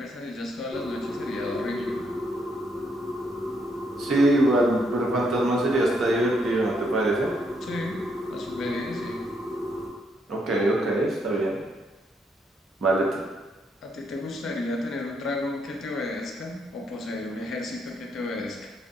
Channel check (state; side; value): normal; both; correlation 0.75